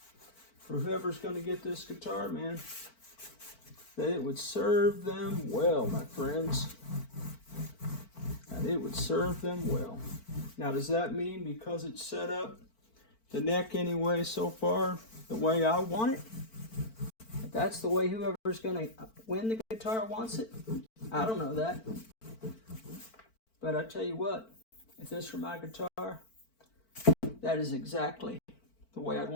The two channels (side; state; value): right; late; 4.5 ms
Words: for whoever's going to get this guitar, man, that it would serve them well, my friends. And it would serve them well. Now, does that mean because it's set up the neck anyway so far the way I want it, that's the way whoever's going to win the guitar wants it? I don't know that. But I tell you what, if this were my guitar, that is exactly the way I'd